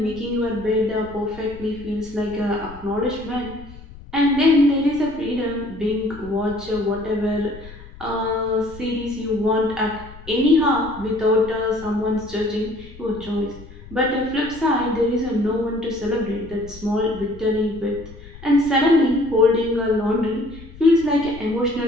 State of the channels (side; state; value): left; noise; rumble, 17 dB below the sound